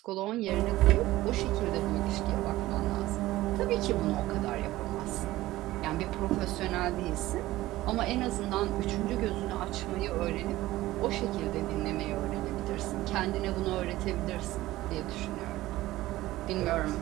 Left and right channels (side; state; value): left; quieter; 16.8 dB